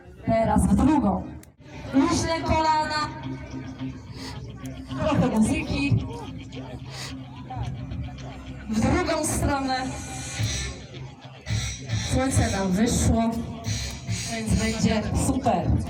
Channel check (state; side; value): identical; both; correlation 1.00